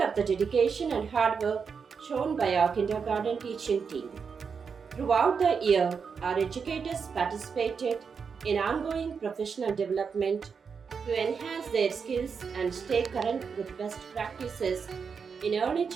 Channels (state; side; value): quieter; left; 5.9 dB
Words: of the dedication and hard work shown by our kindergarten teaching team. Throughout the year, our educators participated in ongoing professional development to enhance their skills and stay current with best practices in early